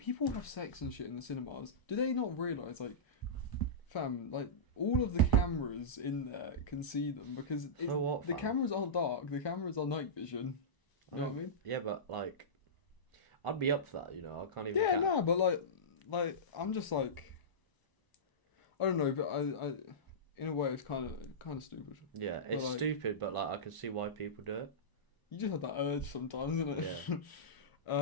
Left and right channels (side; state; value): right; late; 1.0 ms